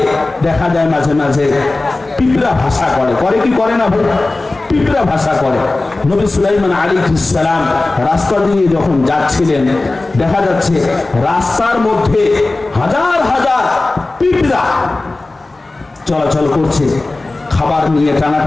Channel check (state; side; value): quieter; right; 3.1 dB